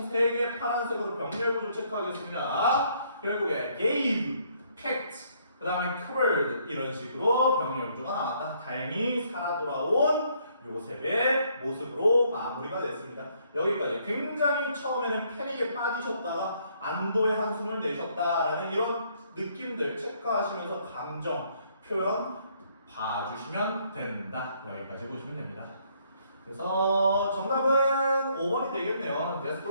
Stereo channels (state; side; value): inverted; both; correlation -0.68